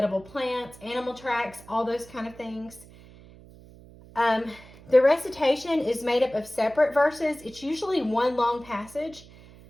plants, animal tracks, all those kind of things. The recitation is made up of separate verses. It's usually one long passage,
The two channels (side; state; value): right; noise; hum, 21 dB below the sound